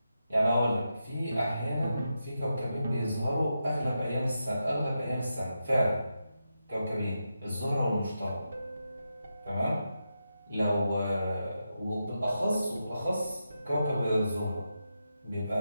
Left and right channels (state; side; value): inverted; both; correlation -0.87